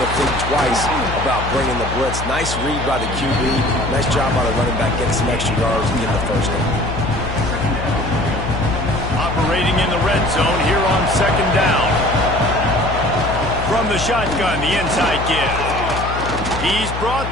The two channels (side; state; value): left; noise; hum, 6 dB below the sound